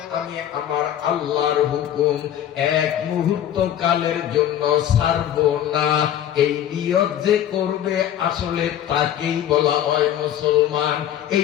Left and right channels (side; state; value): right; quieter; 10.9 dB